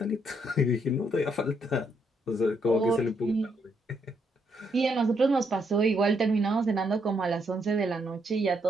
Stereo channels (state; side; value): normal; both; correlation 0.75